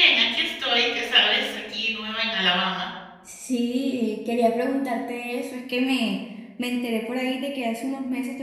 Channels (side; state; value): both; identical; correlation 1.00